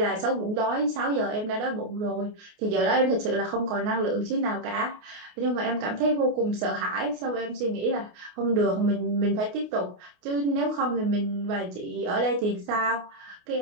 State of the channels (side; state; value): left; late; 28 ms